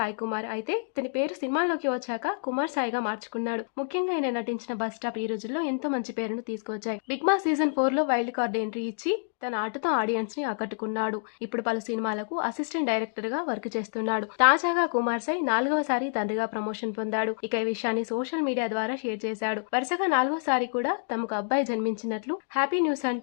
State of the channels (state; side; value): silent; right; digital silence